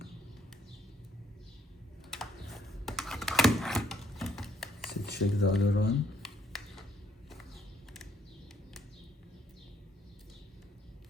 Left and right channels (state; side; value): normal; both; correlation 0.68